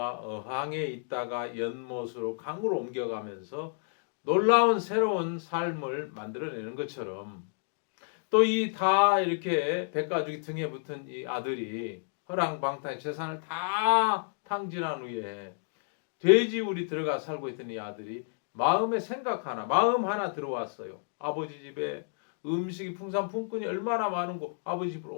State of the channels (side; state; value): right; silent; digital silence